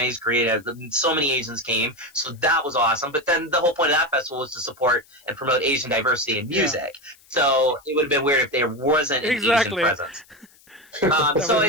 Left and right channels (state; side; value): noise; left; hiss, 28 dB below the sound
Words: Korean. So many Asians came, so that was awesome. But then the whole point of that festival was to support and promote Asian diversity in music. Yeah. So it would have been weird if there wasn't an Asian presence. So